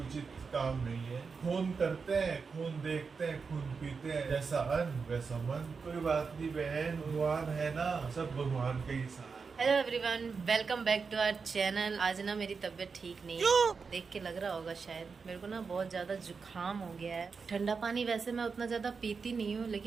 उचित काम नहीं है। खून करते हैं, खून देखते हैं, खून पीते हैं, जैसा अन्न वैसा मन। कोई बात नहीं बहन, भगवान है ना, सब भगवान के ही साथ। Hello everyone, welcome back to our channel. आज ना मेरी तबीयत ठीक नहीं है, देख के लग रहा होगा शायद। मेरे को ना बहुत ज्यादा जुकाम हो गया है। ठंडा पानी वैसे मैं उतना ज्यादा पीती नहीं हूँ,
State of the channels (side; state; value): left; quieter; 5.2 dB